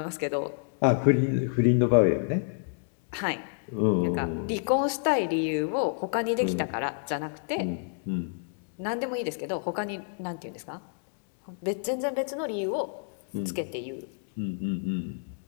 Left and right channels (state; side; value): silent; right; digital silence